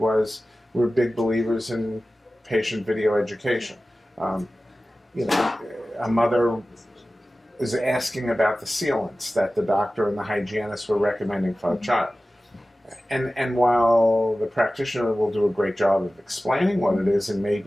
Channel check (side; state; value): both; normal; correlation 0.96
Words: we're big believers in patient video education. Um, a mother is asking about the sealants that the doctor and the hygienist were recommending for a child. And while the practitioner will do a great job of explaining what it is and